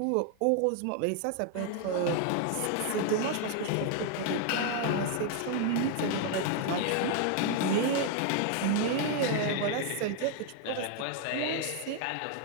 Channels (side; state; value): both; different; correlation 0.00